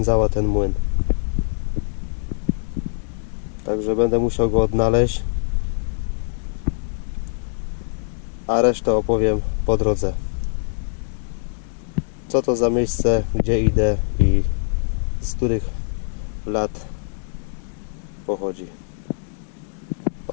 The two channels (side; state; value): right; silent; digital silence